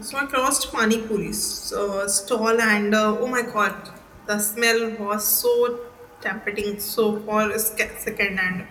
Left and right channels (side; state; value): both; identical; correlation 1.00